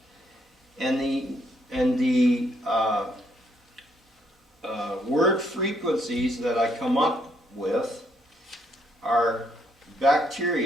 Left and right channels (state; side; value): normal; both; correlation 0.72